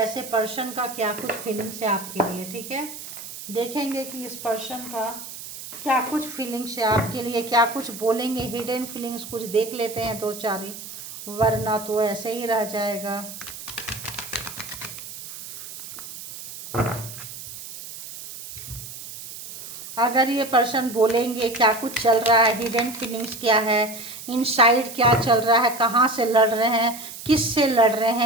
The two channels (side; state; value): right; noise; hiss, 12 dB below the sound